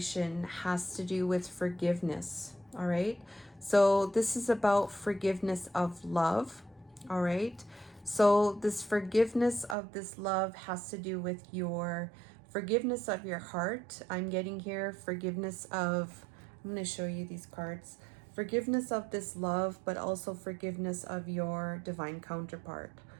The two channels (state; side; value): drops out; left; at 9.8 s